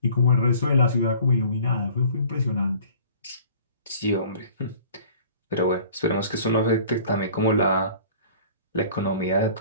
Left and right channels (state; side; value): inverted; both; correlation -0.49